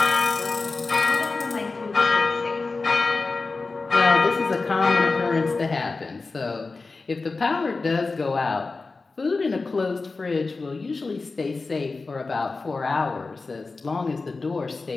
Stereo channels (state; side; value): quieter; right; 3.9 dB